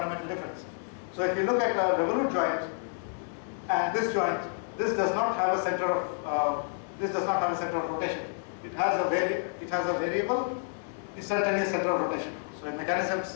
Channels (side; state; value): right; silent; digital silence